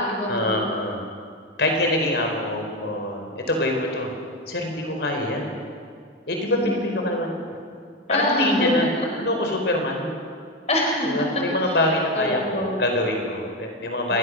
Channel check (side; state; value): both; normal; correlation 0.13